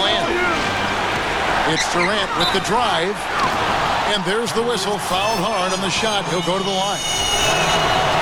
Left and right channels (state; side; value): identical; both; correlation 1.00